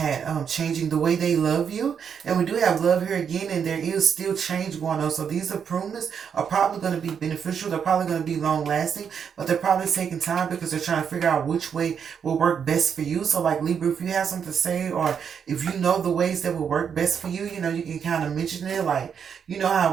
changing the way they love you. And we do have love here again, and there is still change going on. So these improvements are probably going to be beneficial. They're probably going to be long lasting, but they're probably taking time because they're trying to figure out which way will work best for you. So, like, Libra, if you have something to say, or if you know the ways that will work best for you, you know, you can kind of mention it. Like, you know how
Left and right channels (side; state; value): left; quieter; 7.3 dB